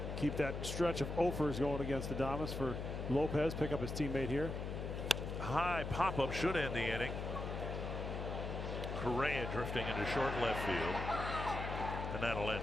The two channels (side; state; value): left; noise; hum, 4 dB below the sound